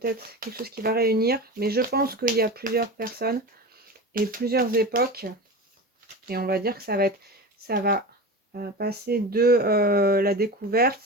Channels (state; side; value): normal; both; correlation 0.28